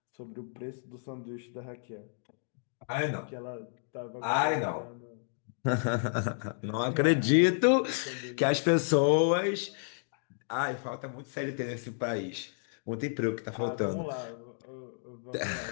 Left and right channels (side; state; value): right; silent; digital silence